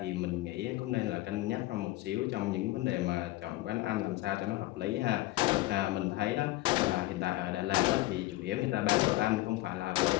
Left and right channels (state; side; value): quieter; right; 18.2 dB